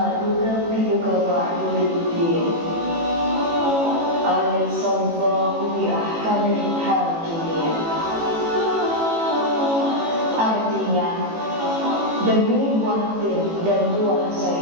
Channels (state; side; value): late; left; 18 ms